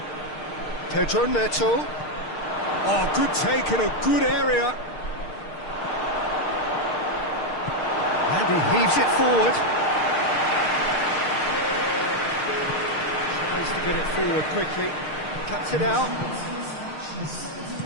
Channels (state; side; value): late; right; 6.5 ms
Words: Pedro Neto. Oh, good take in a good area. And he heaves it forward. Tries to get it forward quickly. Cuts it out.